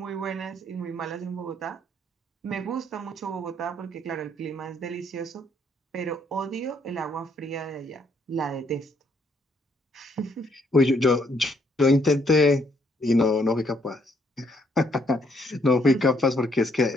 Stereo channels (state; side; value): normal; both; correlation 0.70